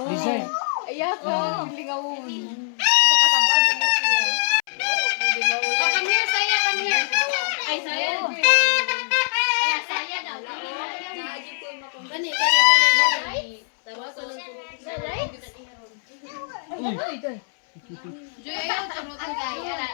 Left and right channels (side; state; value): right; silent; 62 dB below the other